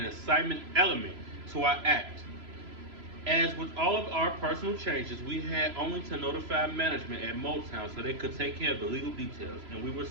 excitement element to our act. As with all of our personal changes, we had only to notify management at Motown so they could take care of the legal details, and we were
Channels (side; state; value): left; late; 3.0 ms